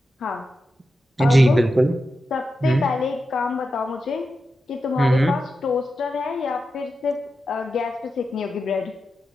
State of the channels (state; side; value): normal; both; correlation 0.90